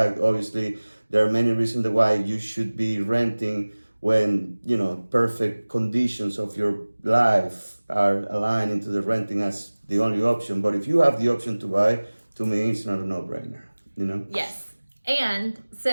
Obviously, there are many reasons why you should be renting when, perfect conditions of your life are aligned into the renting as the only option. But if you have the option to buy, to me, it's not a no-brainer, Yes. And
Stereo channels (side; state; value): both; inverted; correlation -1.00